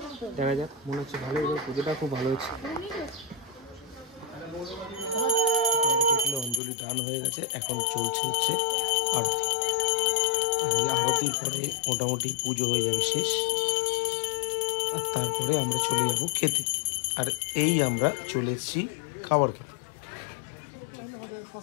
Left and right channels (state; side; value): drops out; right; at 6.6 s